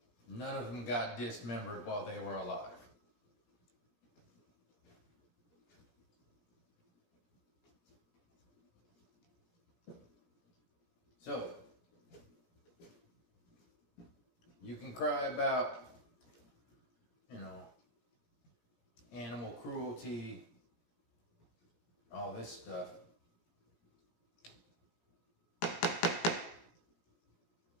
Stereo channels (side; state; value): right; late; 17 ms